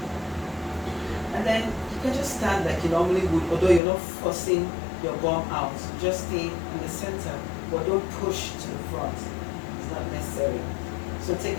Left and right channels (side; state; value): right; drops out; at 3.8 s